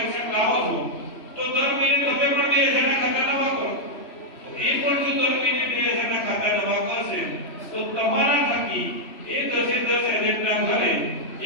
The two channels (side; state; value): right; late; 3.1 ms